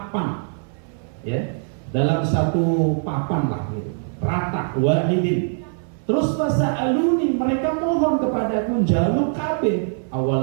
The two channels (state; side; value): silent; left; 64 dB below the other